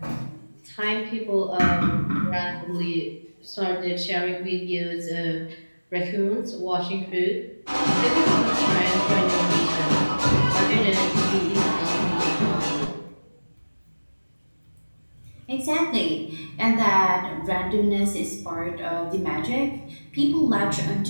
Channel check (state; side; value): inverted; both; correlation -1.00